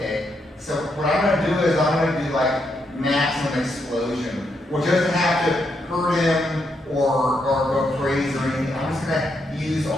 so what I'm gonna do is I'm gonna do like maximum explosion, which doesn't have to hurt him or go crazy or anything. I'm just gonna use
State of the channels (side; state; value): both; normal; correlation 0.79